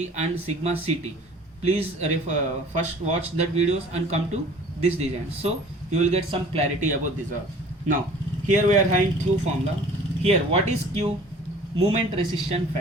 and sigma CT. Please first watch that videos and come to this design, so you will get some clarity about this. Now here we are having Q formula. Here what is Q? Moment resistance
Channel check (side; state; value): both; normal; correlation 0.48